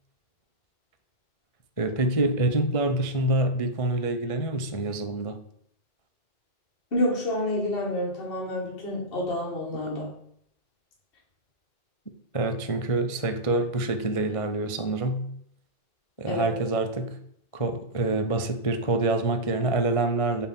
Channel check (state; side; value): late; right; 1.6 ms